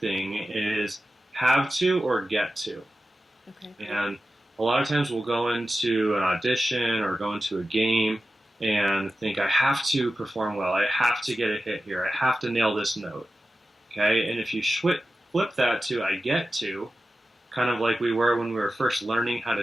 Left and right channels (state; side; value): normal; both; correlation 0.93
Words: is have to or get to. Okay. And a lot of times we'll go into an audition or go into a game and think, I have to perform well. I have to get a hit here. I have to nail this note. Okay. And if you flip that to I get to, kind of like we were when we were first learning how